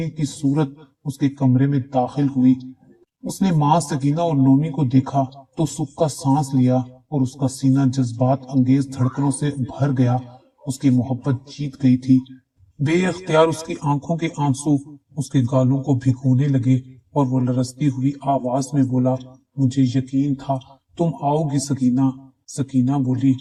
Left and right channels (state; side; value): identical; both; correlation 1.00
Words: की सूरत उसके कमरे में दाखिल हुई। उसने माँ सकीना और नोमी को देखा तो सुख का सांस लिया और उसका सीना जज्बात अंगेज धड़कनों से भर गया। उसकी मोहब्बत जीत गई थी। बेअख्तियार उसकी आंखों के आंसू उसके गालों को भिगोने लगे और वो लरसती हुई आवाज में बोला, मुझे यकीन था तुम आओगी सकीना। सकीना बोली,